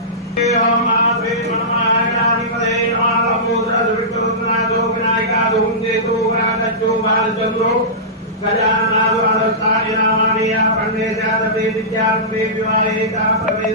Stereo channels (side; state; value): both; normal; correlation -0.19